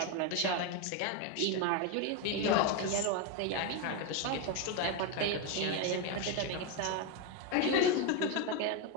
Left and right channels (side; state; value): both; different; correlation 0.02